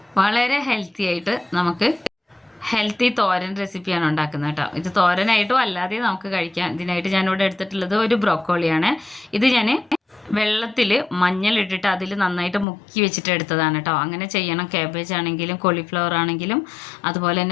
വളരെ ഹെൽത്തി ആയിട്ട് നമുക്ക് ഹെൽത്തി തോരൻ റെസിപ്പിയാണ് ഉണ്ടാക്കുന്നത് കേട്ടോ. ഇത് തോരനായിട്ടും അല്ലാതെ നമുക്ക് കഴിക്കാം. ഇതിനായിട്ട് ഞാനിവിടെ എടുത്തിട്ടുള്ളത് ഒരു ബ്രോക്കോളിയാണ്. ഇത് ഞാൻ വെള്ളത്തിൽ മഞ്ഞളിട്ടിട്ട് അതിൽ നന്നായിട്ട് മുക്കി വെച്ചിട്ട് എടുത്തതാണ് കേട്ടോ. അങ്ങനെ ചെയ്യണം. കാബേജ് ആണെങ്കിലും കോളിഫ്ലവർ ആണെങ്കിലും അതുപോലെ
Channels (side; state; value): right; drops out; at 12.7 s